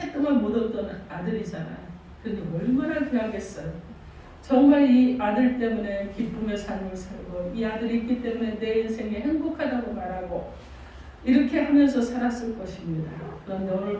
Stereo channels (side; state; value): both; identical; correlation 1.00